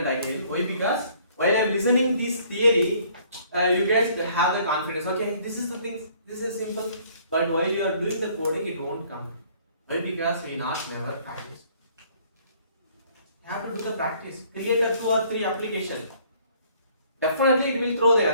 again? Why? Because while I am listening this theory, you guys have the confidence. Okay, this is the thing. This is simple. But while you are doing the coding, it won't come. Why? Because we not never practice. You have to do the practice. Create a 2 or 3 application. Definitely it will throw the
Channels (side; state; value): both; inverted; correlation -0.60